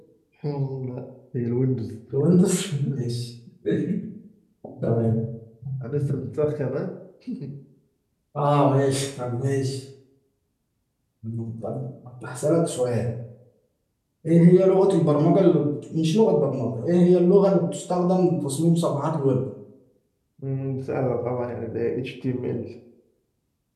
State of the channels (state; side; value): identical; both; correlation 1.00